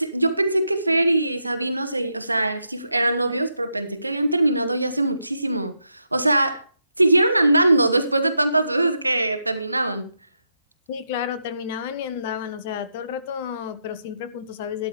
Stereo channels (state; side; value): inverted; both; correlation -0.82